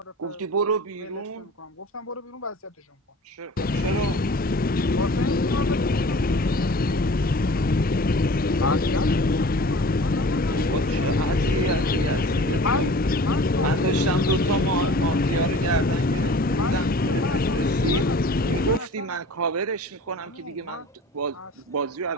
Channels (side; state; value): both; normal; correlation 0.43